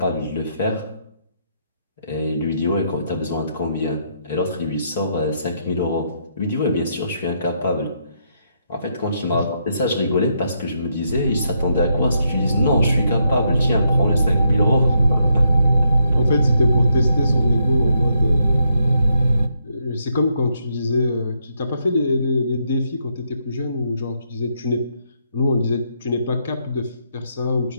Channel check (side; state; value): both; inverted; correlation -0.77